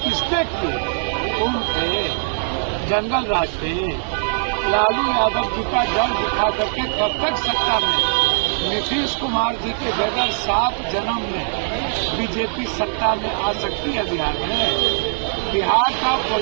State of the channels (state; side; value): silent; left; digital silence